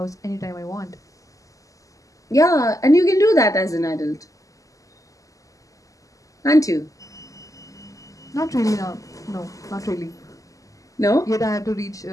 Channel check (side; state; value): right; late; 0.16 ms